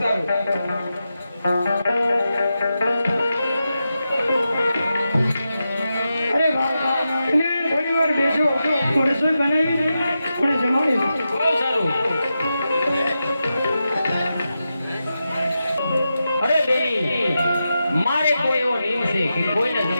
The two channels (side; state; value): both; inverted; correlation -0.89